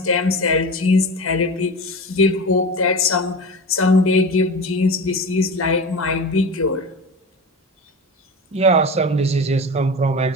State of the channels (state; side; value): normal; both; correlation 0.29